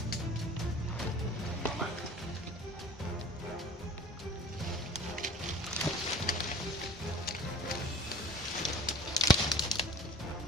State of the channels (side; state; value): both; normal; correlation 0.46